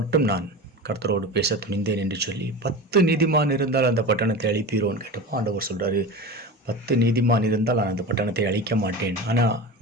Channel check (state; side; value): normal; both; correlation 0.29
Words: நான் கர்த்தரோடு பேச துணிந்தேன் என்று சொல்லி 10 நீதிமான் இருந்தால் அந்த பட்டணத்தை அழிப்பீரோன்னு கேட்டப்போ ஆண்டவர் சொல்கிறாரு, 10 நீதிமான் இருந்தால் நான் அந்த பட்டணத்தை அழிக்க மாட்டேன். ஆனால்